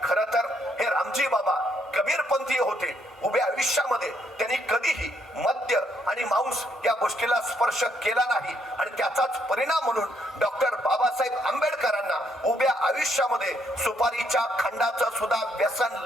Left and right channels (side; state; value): both; normal; correlation 0.72